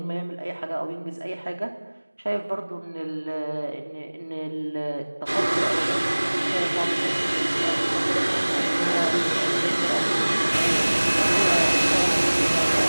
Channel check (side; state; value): both; inverted; correlation -1.00